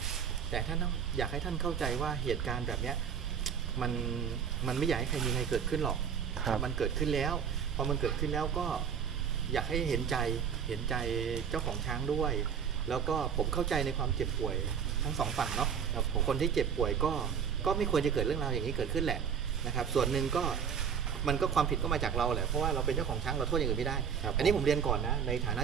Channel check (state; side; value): quieter; left; 7.3 dB